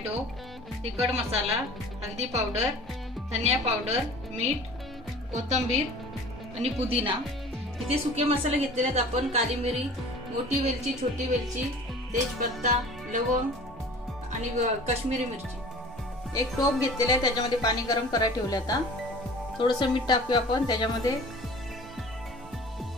तिखट मसाला, हळदी पावडर, धनिया पावडर, मीठ, कोथिंबीर आणि पुदिना। इथे सुके मसाले घेतलेले आहेत आपण, काली मिरी, मोठी वेलची, छोटी वेलची, तेजपत्ता, लवंग आणि काश्मीरी मिरची। एक टोप घेतलेला आहे, त्याच्यामध्ये पाणी गरम करायला ठेवले। आता थोडंसं मीठ टाकूया आपण त्याच्यामध्ये।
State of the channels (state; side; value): normal; both; correlation 0.43